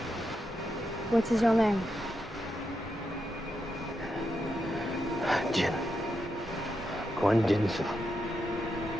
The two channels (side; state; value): both; normal; correlation 0.85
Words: What is your name? Jin. Kwon Jinsu.